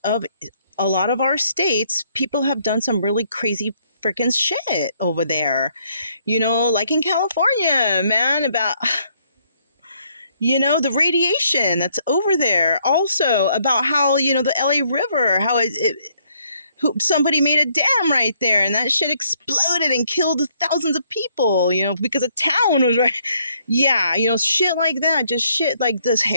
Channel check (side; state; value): both; inverted; correlation -0.69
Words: of a lot of our states, people have done some really crazy freaking shit over there. You know, like in California, man, about, you know, the radiation that's over there. Also about how, you know, the LA River, how somebody made a dam right there, and that shit exploded and killed thousands of people, you know, because a town was right. Yeah, you know, shit like that. Just shit like this